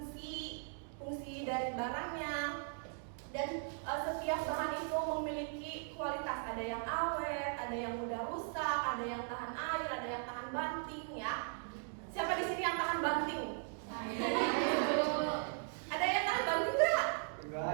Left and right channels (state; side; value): silent; left; 52 dB below the other